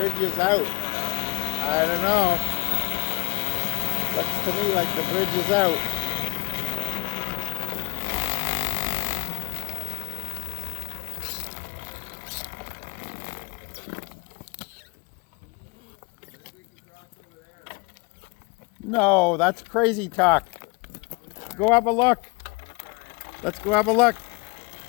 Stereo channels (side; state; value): right; quieter; 28.5 dB